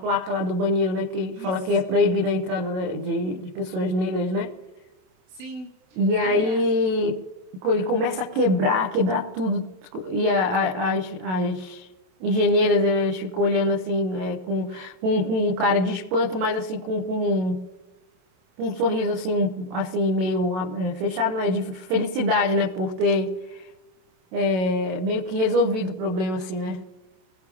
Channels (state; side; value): late; left; 28 ms